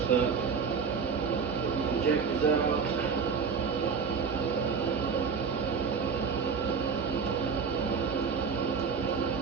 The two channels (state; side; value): quieter; left; 5.7 dB